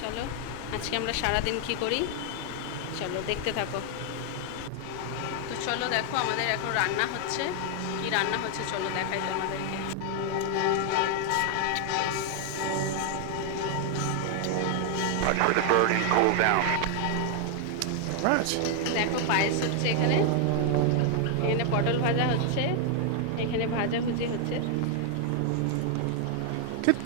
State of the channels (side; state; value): both; different; correlation 0.00